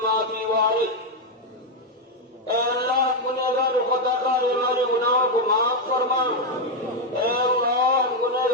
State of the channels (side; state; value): both; normal; correlation 0.03